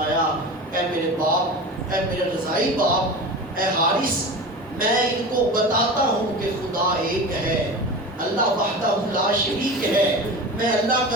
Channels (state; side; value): normal; both; correlation 0.31